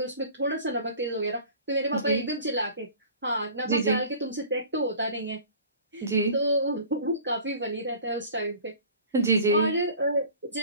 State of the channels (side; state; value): both; inverted; correlation -0.43